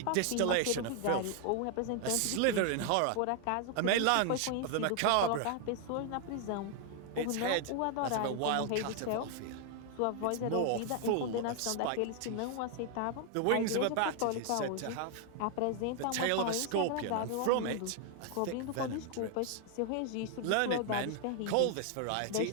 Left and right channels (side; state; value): both; different; correlation 0.00